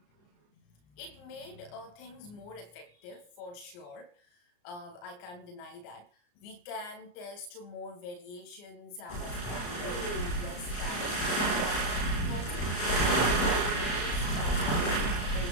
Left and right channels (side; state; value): right; late; 34 ms